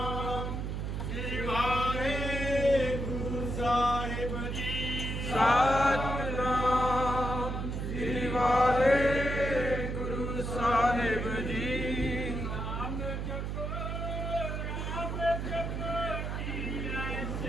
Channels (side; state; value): right; noise; hum, 3 dB below the sound